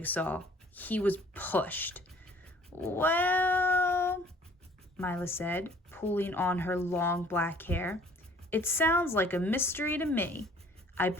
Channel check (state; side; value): normal; both; correlation 0.55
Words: He was pushed. Well, Mila said, pulling on her long black hair. It sounds like a mystery to me. I